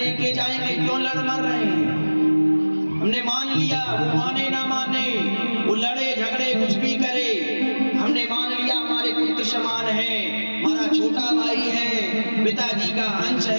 जाएंगे, क्यों लड़ मर रहे हैं? हमने मान लिया, वो माने ना माने, वो लड़े झगड़े कुछ भी करे, हमने मान लिया हमारे पुत्र समान है, हमारा छोटा भाई है, पिताजी का अंश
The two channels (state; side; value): inverted; both; correlation -1.00